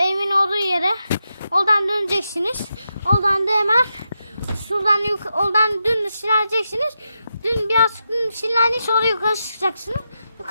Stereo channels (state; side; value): inverted; both; correlation -0.86